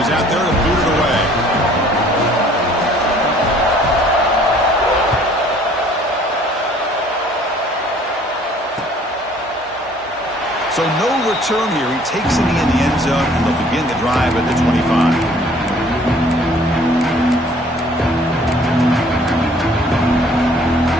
is out there to boot it away. So no return here. He takes it in the end zone, and they'll begin the drive at the 25.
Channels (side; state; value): both; normal; correlation 0.56